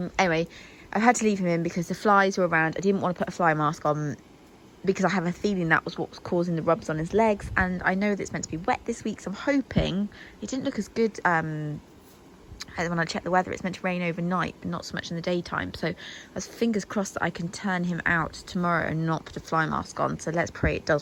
I had to leave him in because the flies were around. I didn't want to put a fly mask on because I have a feeling that was what was causing the rubs on his legs, and I know that it's meant to be wet this week, so I'm hoping it didn't look as good when I checked the weather. It's meant to rain overnight, but not so much in the daytime, so I was fingers crossed that I can turn him out tomorrow and not put a fly mask on. So let's pray it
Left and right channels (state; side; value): identical; both; correlation 1.00